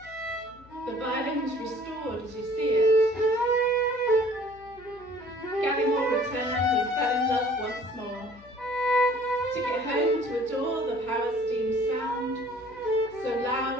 The violin was restored as you see it. Gallimore returned and fell in love once more. Took it home to adore the power steam sound, so loud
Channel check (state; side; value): noise; left; hum, 24 dB below the sound